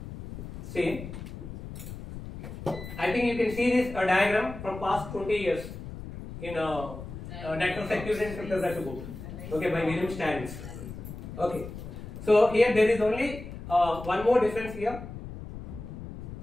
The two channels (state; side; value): noise; left; rumble, 11 dB below the sound